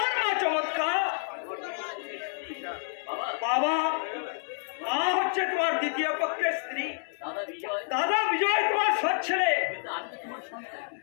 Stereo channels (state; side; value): silent; right; digital silence